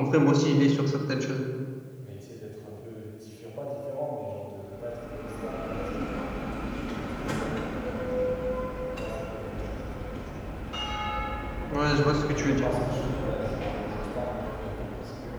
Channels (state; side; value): identical; both; correlation 1.00